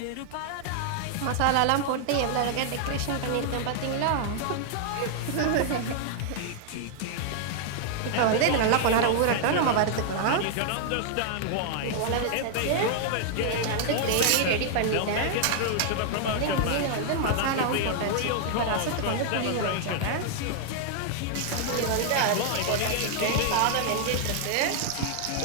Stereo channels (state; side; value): different; both; correlation 0.00